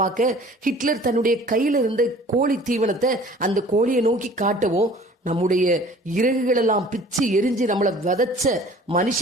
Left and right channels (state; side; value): normal; both; correlation 0.49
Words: ஹிட்லர் தன்னுடைய கையில இருந்த கோழி தீவனத்தை அந்த கோழியை நோக்கி காட்டவும், நம்முடைய இறகுகள் எல்லாம் பிச்சு எரிஞ்சு நம்மளை விதைச்ச